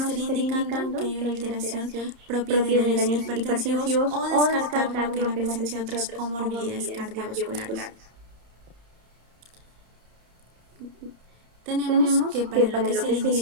estaría indicando que hay una alteración propia de daños hipertensivos o descartar lo que es la presencia de otras comorbilidades cardiovasculares. Tenemos que para lo que es el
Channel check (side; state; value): left; late; 30 ms